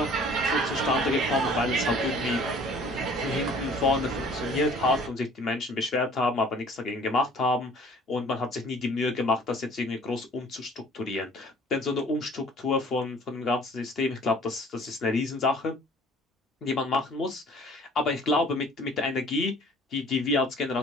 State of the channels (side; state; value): both; normal; correlation 0.51